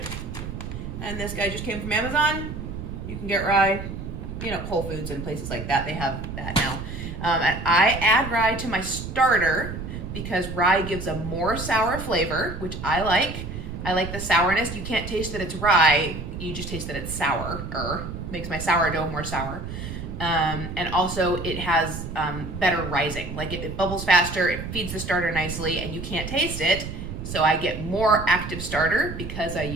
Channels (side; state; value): right; noise; rumble, 8 dB below the sound